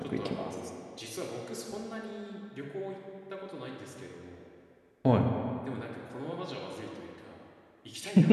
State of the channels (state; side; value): identical; both; correlation 1.00